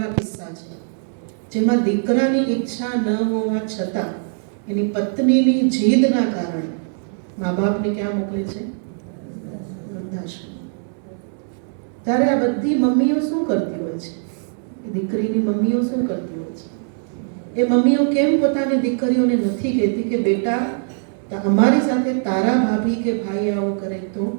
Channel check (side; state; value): left; silent; digital silence